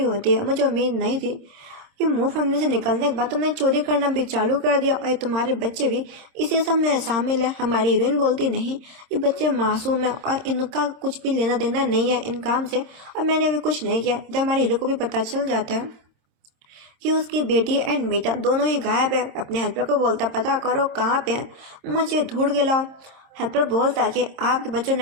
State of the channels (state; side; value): late; left; 26 ms